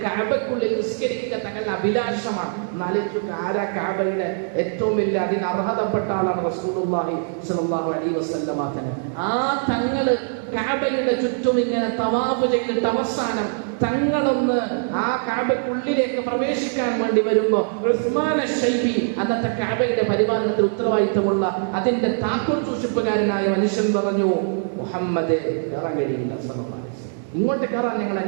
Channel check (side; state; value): left; silent; digital silence